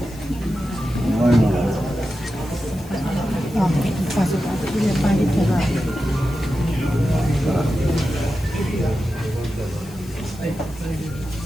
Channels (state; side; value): noise; left; hiss, 22 dB below the sound